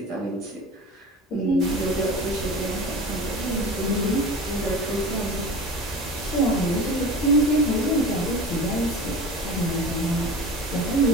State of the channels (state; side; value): normal; both; correlation 0.34